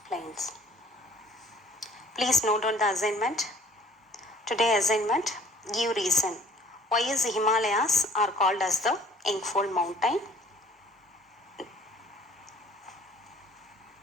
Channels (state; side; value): normal; both; correlation 0.55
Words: plains. Please note on the assignment. Today assignment, give reason. Why is the Himalayas are called as the Engfold mountain?